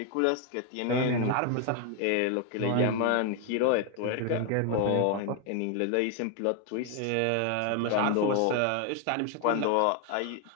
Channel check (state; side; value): different; both; correlation 0.01